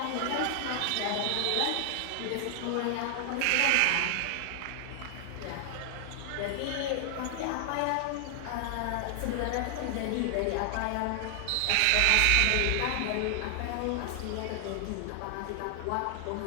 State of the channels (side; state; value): both; different; correlation 0.00